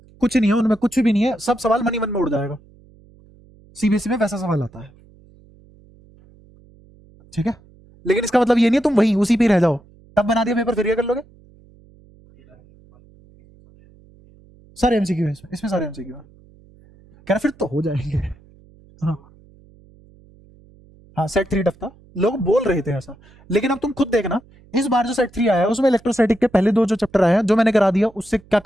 कुछ नहीं है उनमें, कुछ भी नहीं है, सब सवाल मनी मन में उड़ जाएगा। सीबीएसई में वैसा सवाल आता है, ठीक है। लेकिन इसका मतलब ये नहीं है तुम वहीं उसी पे ही रह जाओ, तब बना दिया पेपर फिर ये कर लोगे। सारे एमसीक्यू है इसमें, इसमें सारे एमसीक्यू है। कह रहा फिर तो हो जाएंगे। हाँ हाँ, सेट 3 टफ था, लोग बोल रहे थे ऐसा, लेकिन अब तुम खुद देखना, इस बार जो सेट 3 आया है उसमें इलेक्ट्रोस्टैटिक के पहले 2 जो चैप्टर आए हैं जो मैंने करा दिया, उससे क्या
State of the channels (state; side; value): noise; right; hum, 27 dB below the sound